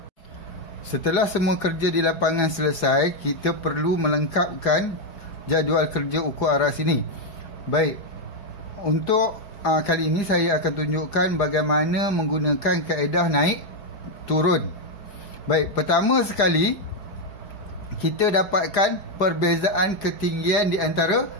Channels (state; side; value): late; right; 4.9 ms